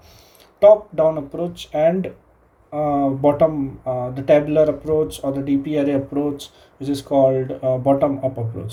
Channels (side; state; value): both; identical; correlation 1.00